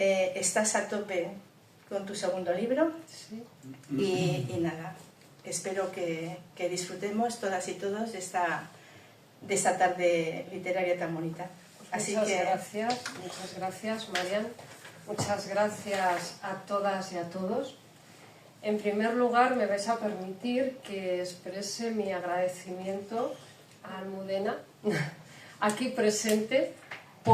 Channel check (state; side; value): identical; both; correlation 1.00